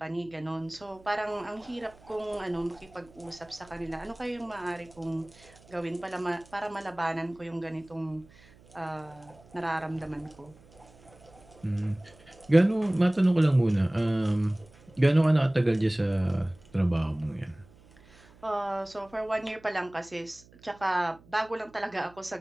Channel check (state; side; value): noise; right; hum, 26 dB below the sound